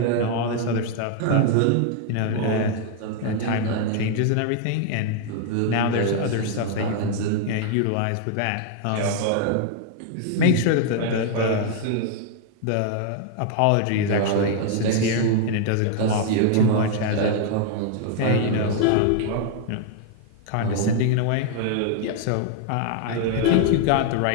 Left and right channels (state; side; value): different; both; correlation 0.00